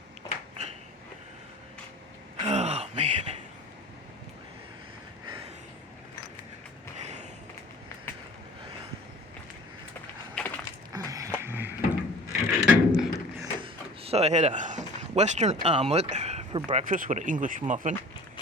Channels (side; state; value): both; normal; correlation 0.44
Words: Oh, man. So I had a Western omelet for breakfast with an English muffin.